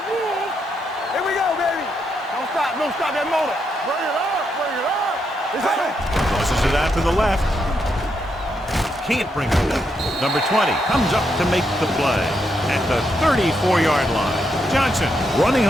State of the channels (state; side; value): normal; both; correlation 0.80